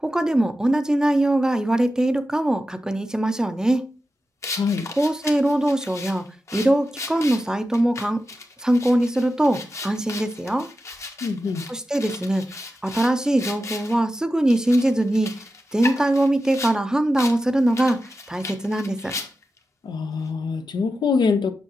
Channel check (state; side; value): normal; both; correlation 0.91